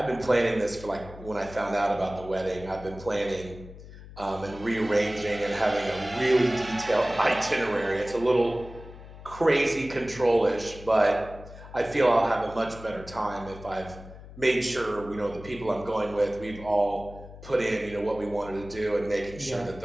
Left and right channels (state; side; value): noise; left; hum, 16 dB below the sound